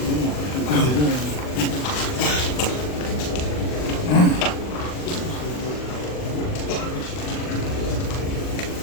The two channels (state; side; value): late; right; 40 ms